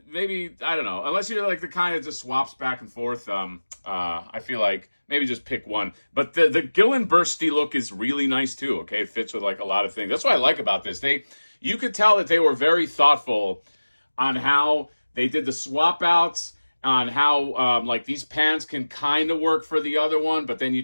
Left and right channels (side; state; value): both; inverted; correlation -1.00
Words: maybe, I don't know, unless you're like the kind that just swaps back and forth. I feel like maybe just pick one. But the Gullinbusrti look is really nice too. Okay, it fits with like a lot of things. That's what I like about this. You could tell that they were very thoughtful on how they did the swap outs, on how like these pants can kind of work for the other one, but then you